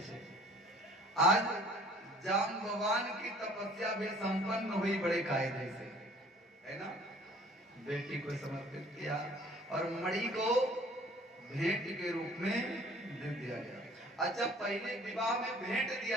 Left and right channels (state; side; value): normal; both; correlation 0.52